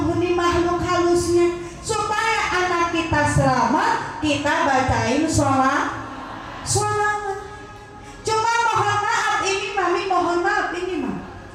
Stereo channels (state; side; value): identical; both; correlation 1.00